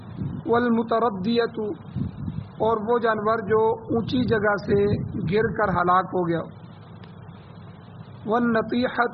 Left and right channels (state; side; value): identical; both; correlation 1.00